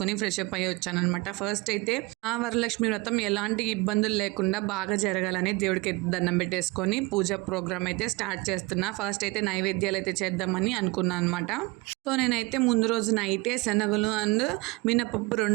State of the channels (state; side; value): quieter; left; 24.2 dB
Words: ఫ్రెష్ అప్ అయ్యి వచ్చానమాట. ఫస్ట్ అయితే ఆ వరలక్ష్మి వ్రతం ఎలాంటి ఇబ్బందులు లేకుండా బాగా జరగాలని దేవుడికి దండం పెట్టేసుకొని పూజ ప్రోగ్రామ్ అయితే స్టార్ట్ చేస్తున్నా. ఫస్ట్ అయితే నైవేద్యాలు అయితే చేద్దామని అనుకున్నాను అనమాట. సో నేనైతే ముందు రోజు నైటే శనగలు అండ్ మినపప్పు